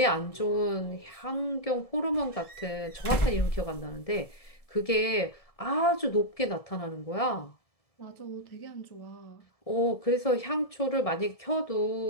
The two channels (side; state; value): right; late; 1.7 ms